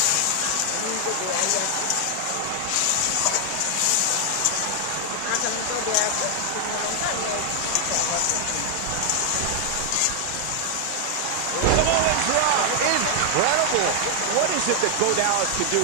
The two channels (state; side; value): different; both; correlation 0.00